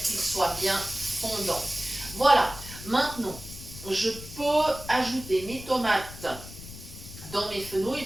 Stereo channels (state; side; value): noise; left; rumble, 14 dB below the sound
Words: qu'ils soient bien fondants. Voilà, maintenant je peux ajouter mes tomates dans mes